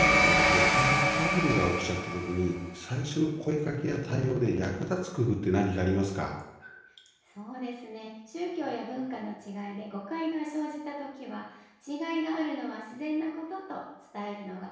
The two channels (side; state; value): both; identical; correlation 1.00